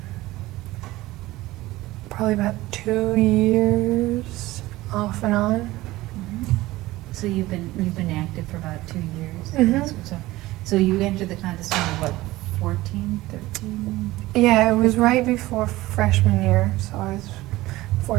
probably about 2 years off and on. So you've been active for about 2 years. Mhm. So you entered the contest when you were what, 14, 13? Yeah, it was right before freshman year, so I was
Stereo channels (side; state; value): left; quieter; 18.1 dB